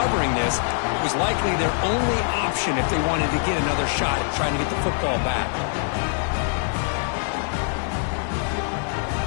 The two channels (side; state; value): right; silent; 55 dB below the other